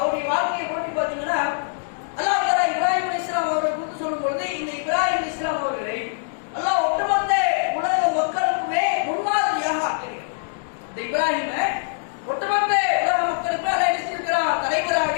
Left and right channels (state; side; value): silent; right; digital silence